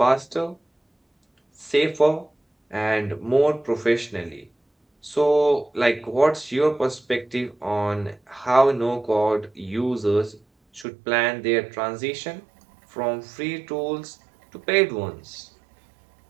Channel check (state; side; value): drops out; left; at 10.9 s